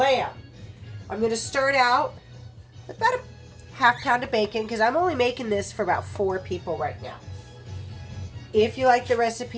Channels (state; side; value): identical; both; correlation 1.00